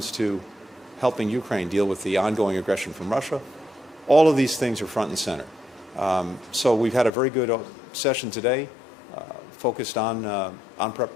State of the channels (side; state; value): right; drops out; at 7.1 s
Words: to helping Ukraine deal with the ongoing aggression from Russia. All of these things are front and center. So we've had a very good session today, focused on